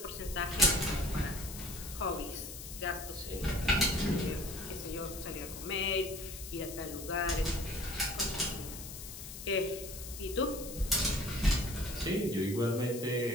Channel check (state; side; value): noise; left; hiss, 10 dB below the sound